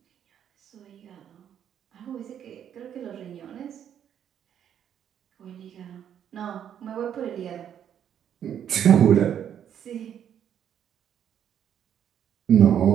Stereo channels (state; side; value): quieter; left; 9.4 dB